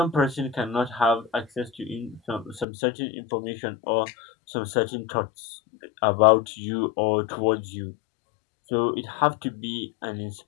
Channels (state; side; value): drops out; right; at 2.7 s